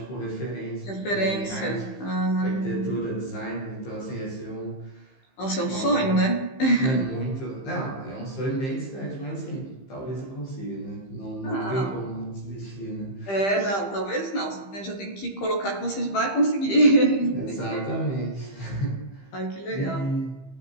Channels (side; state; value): right; late; 15 ms